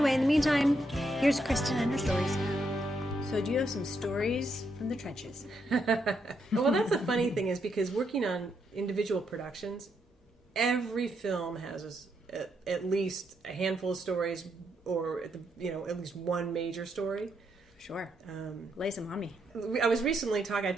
in the meantime, here's Cristen and her stories. So do you have some stories from the trenches? Well, that's the funny thing is because working on individual productions, every film has at least a handful of stories or, at least one major story. Sure. Lay some on me. I was recently I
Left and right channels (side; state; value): both; normal; correlation 0.78